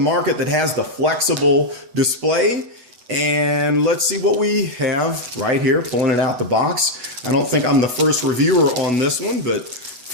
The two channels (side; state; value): left; late; 8.1 ms